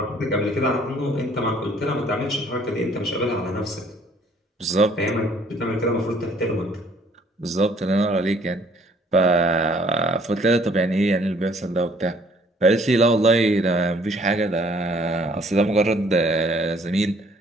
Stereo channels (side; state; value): both; normal; correlation 0.60